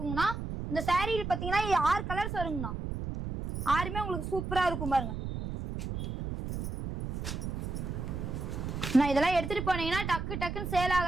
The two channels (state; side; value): noise; right; rumble, 5 dB below the sound